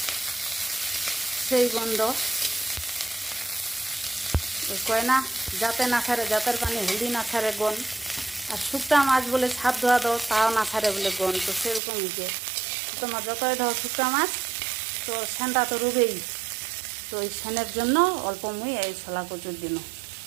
সেই গন্ধ কয় না যাতে না ছাড়ে, জাতের পানি হলদি না ছাড়ে গন। আর শুক্তা মাছ বলে ছাদ ধোয়া দাও তাও না ছাড়ে বলে গন। তো সেরকম হয়েছে তোমার যতই ধর শুক্তা মাছ তো সেনটা তো রুবেই। তো ওই সেনের জন্য অল্প মুই এই শলা কচুর দিন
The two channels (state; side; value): drops out; left; at 11.8 s